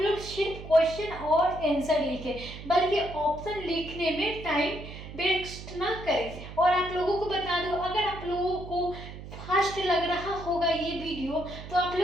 सिर्फ क्वेश्चन और आंसर लिखें, बल्कि ऑप्शन लिखने में टाइम वेस्ट ना करें। और आप लोगों को बता दूं, अगर आप लोगों को फास्ट लग रहा होगा ये वीडियो तो आप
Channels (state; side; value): noise; right; hum, 12 dB below the sound